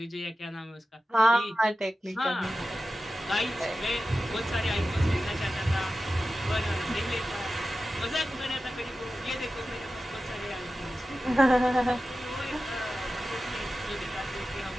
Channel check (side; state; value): both; normal; correlation 0.93